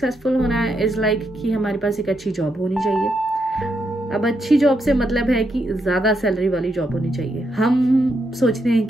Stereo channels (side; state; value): both; normal; correlation 0.80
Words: होना इज़ लाइक कि हमारे पास एक अच्छी जॉब होनी चाहिए। अब अच्छी जॉब से मतलब है कि ज़्यादा सैलरी वाली जॉब होनी चाहिए। हम सोचते हैं